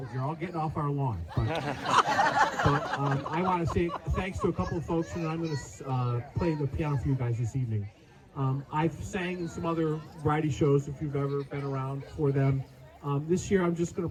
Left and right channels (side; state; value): both; identical; correlation 1.00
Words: you're all getting off our lawn. But I want to say thanks to a couple of folks, and I'm going to play the piano for you guys this evening. I've sang in some other variety shows, if you've ever been around for them. This year, I'm just going